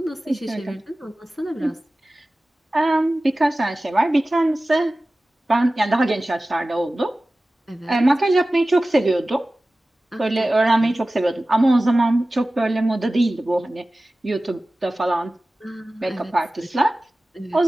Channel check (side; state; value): both; normal; correlation 0.97